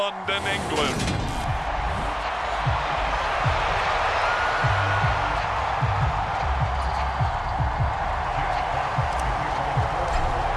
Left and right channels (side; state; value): both; identical; correlation 1.00